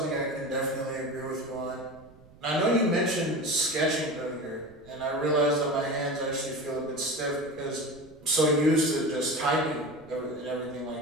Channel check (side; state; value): right; noise; rumble, 25 dB below the sound